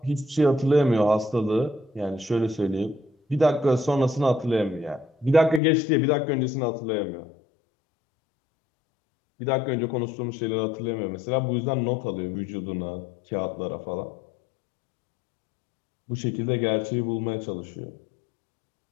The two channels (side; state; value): right; drops out; at 5.6 s